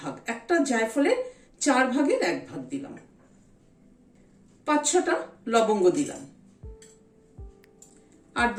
একটা জায়ফলের 4 ভাগের 1 ভাগ দিলাম। 5-6টা লবঙ্গ দিলাম, আর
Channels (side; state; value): both; identical; correlation 1.00